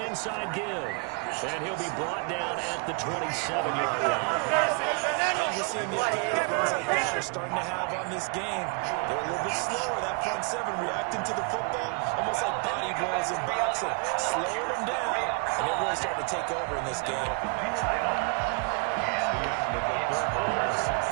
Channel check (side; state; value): left; quieter; 34.7 dB